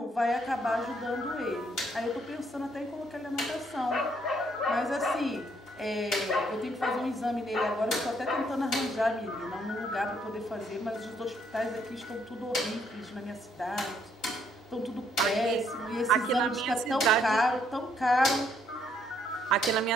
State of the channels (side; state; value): both; normal; correlation 0.70